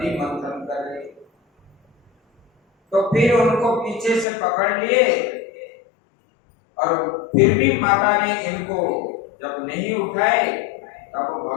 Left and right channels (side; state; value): right; drops out; at 4.2 s